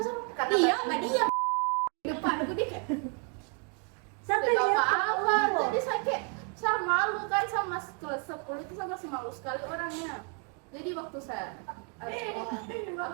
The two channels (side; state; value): left; quieter; 37.5 dB